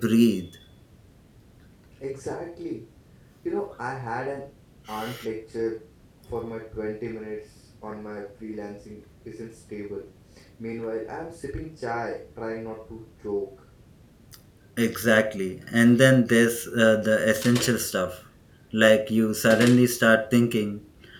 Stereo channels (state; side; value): identical; both; correlation 1.00